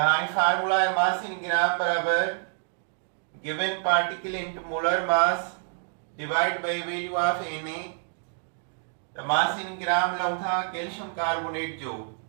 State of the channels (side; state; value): left; silent; 60 dB below the other